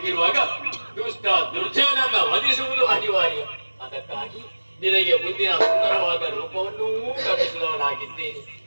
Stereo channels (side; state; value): both; inverted; correlation -1.00